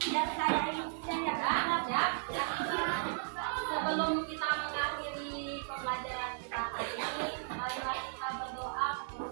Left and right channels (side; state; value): left; silent; digital silence